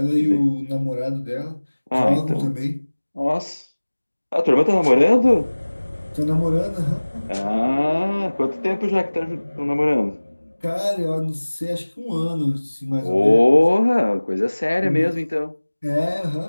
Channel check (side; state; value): both; inverted; correlation -1.00